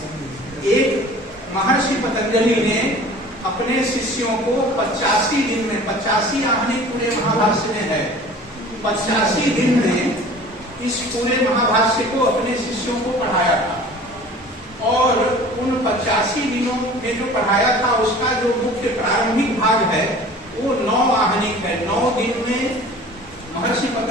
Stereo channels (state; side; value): normal; both; correlation 0.44